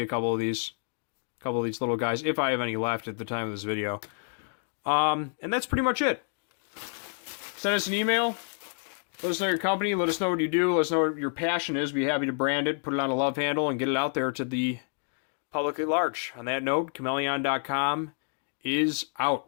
a couple of these little guys, if I have any left at the time of this video. And that's pretty much it. Send us an email. Let us know your company. Let us know what you do. Let us know what your passion is. Be happy to brand it, put it on a Lovehandle, and get it out there to the public at large. On that note, Chmelaeon.com is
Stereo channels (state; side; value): silent; right; 59 dB below the other